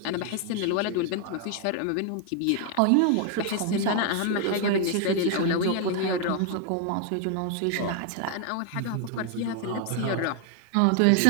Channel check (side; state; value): both; different; correlation 0.00